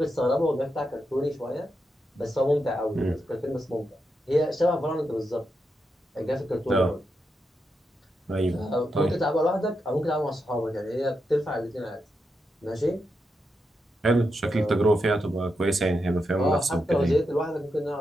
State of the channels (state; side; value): normal; both; correlation 0.85